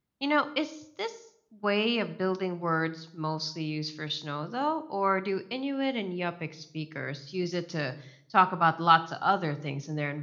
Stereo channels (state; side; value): identical; both; correlation 1.00